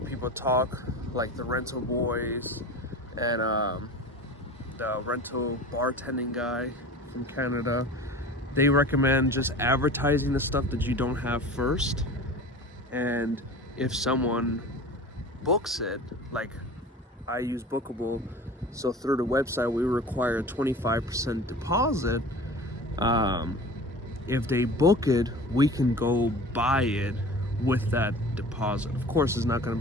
people talk, like the rental boys and the rental bartending guy from Canada. They recommend just advertising the stuff that you don't have first, and if someone books it, like I use Bookable, so through the website we require a 25% deposit. If they book it, we can go buy it with that deposit. Of course it's not going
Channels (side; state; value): both; normal; correlation 0.38